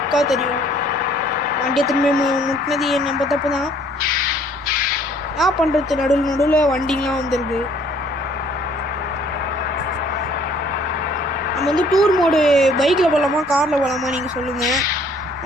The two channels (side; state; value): both; normal; correlation 0.59